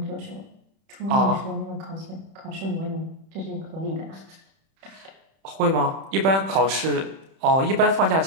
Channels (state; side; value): late; left; 31 ms